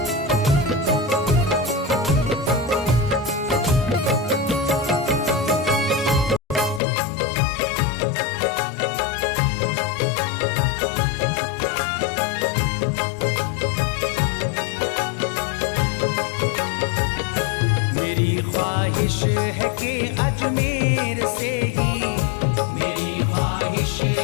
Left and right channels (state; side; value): drops out; right; at 6.8 s